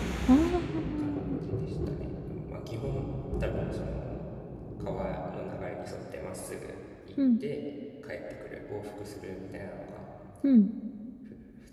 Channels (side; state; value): both; identical; correlation 1.00